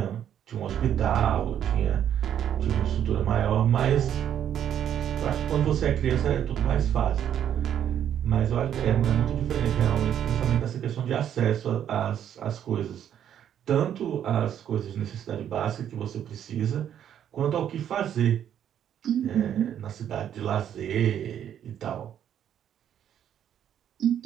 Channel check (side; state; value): left; quieter; 9.8 dB